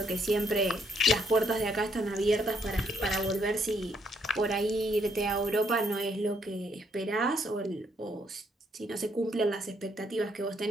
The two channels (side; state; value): both; normal; correlation 0.72